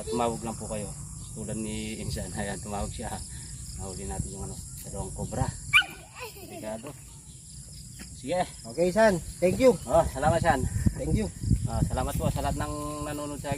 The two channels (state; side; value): identical; both; correlation 1.00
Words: tumawag lang po kayo. Tulad ni Insan, ayan, tumawag siya. Nahuli natin yung ano, dalawang cobra. Delikado. Sige. Okay, San. Thank you. Salamat San. Thank you. Salamat po sa lahat ng nanonood sa